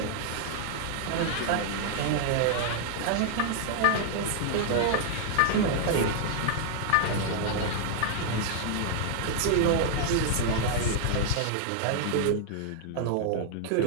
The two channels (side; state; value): both; different; correlation 0.00